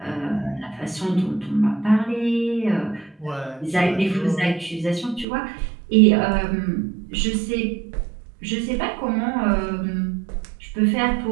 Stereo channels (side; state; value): left; drops out; at 5.2 s